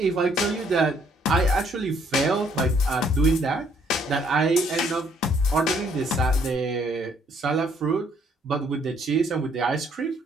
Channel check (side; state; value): both; normal; correlation 0.66